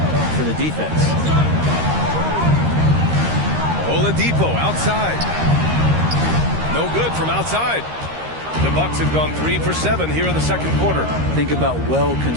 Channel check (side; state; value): left; late; 13 ms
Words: for the defense. Oladipo outside. No good from outside. The Bucks have gone 3 for 7 here in the second quarter. Think about